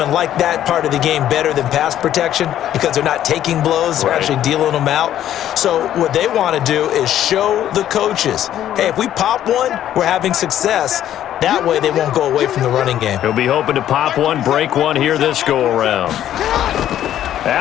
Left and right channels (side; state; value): right; quieter; 11.5 dB